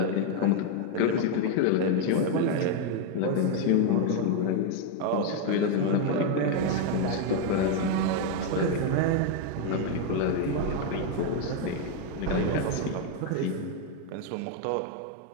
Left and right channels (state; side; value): different; both; correlation 0.01